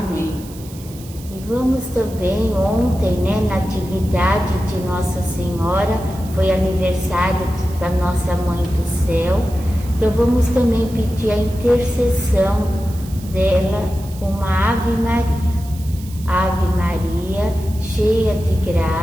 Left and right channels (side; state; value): right; noise; hiss, 19 dB below the sound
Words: E vamos também, ontem, na atividade de Nossa Senhora, foi aniversário da nossa Mãe do Céu, então vamos também pedir a intercessão dela, uma Ave Maria. Ave Maria, cheia de